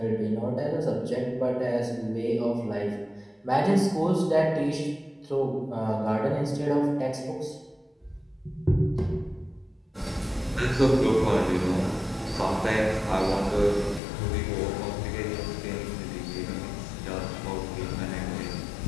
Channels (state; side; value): drops out; right; at 14.0 s